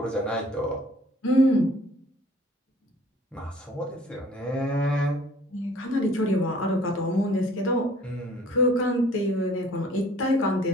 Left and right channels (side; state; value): both; normal; correlation 0.53